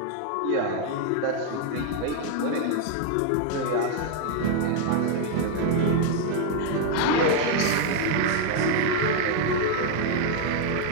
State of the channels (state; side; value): different; both; correlation 0.00